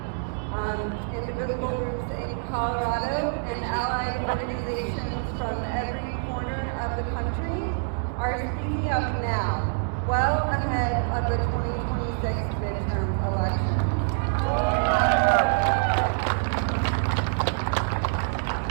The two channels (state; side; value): silent; left; digital silence